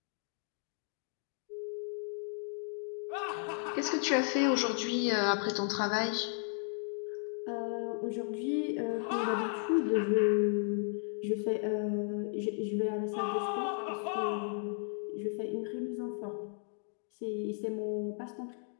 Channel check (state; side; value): silent; right; 55 dB below the other